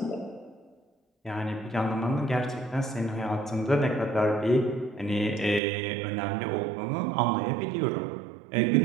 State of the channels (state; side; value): drops out; left; at 5.6 s